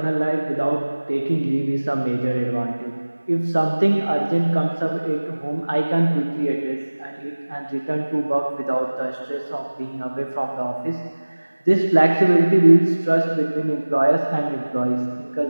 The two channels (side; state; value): both; inverted; correlation -1.00